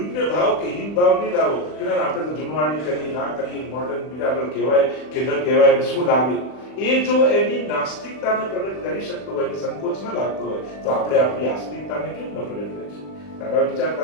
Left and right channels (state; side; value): late; right; 40 ms